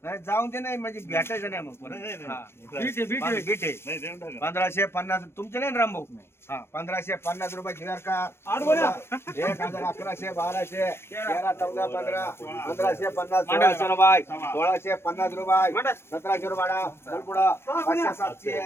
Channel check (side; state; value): right; late; 0.12 ms